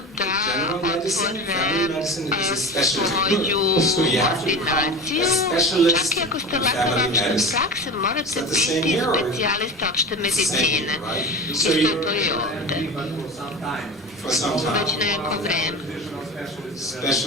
general medicine, family medicine is a specialty. So you have to become a specialist in family medicine. Is that the same here or the same here, right? So you for some time.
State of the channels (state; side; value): normal; both; correlation 0.30